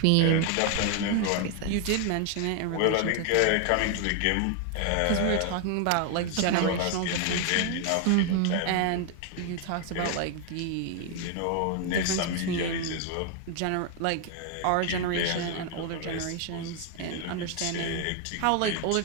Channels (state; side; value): different; both; correlation 0.00